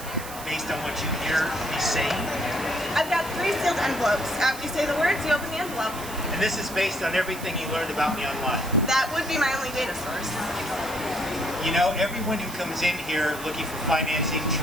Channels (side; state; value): right; noise; hiss, 12 dB below the sound